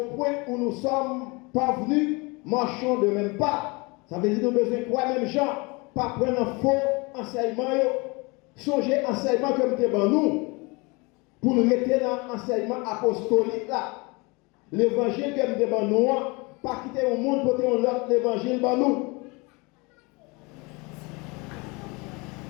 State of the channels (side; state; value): right; quieter; 27.2 dB